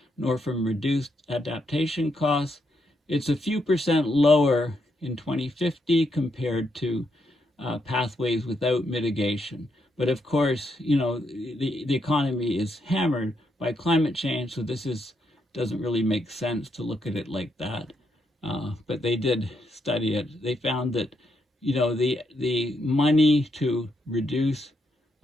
nor from reduced adaptation costs, it's a few percent lower in 2050 compared to pathways without mitigation. But of course, the economy is hammered by climate change, so this doesn't really make sense to look at it like that. But they did study it. They found that, the money to reduce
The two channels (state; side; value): normal; both; correlation 0.79